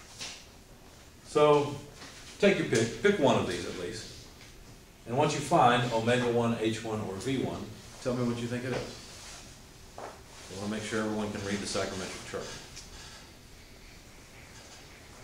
So take your pick. Pick one of these at least. And once you find omega 1, H1, or V1, tell me what you think it is. I want to make sure everyone can read the psychrometric chart.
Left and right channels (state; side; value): identical; both; correlation 1.00